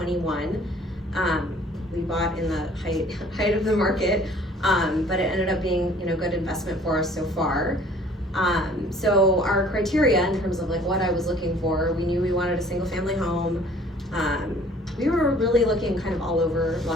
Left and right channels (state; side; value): normal; both; correlation 0.54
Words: We bought in the height of the market, but it ended up being, good investment for us so far. So our criteria in terms of like what I was looking for, we knew we wanted a single family home. We were really looking kind of all over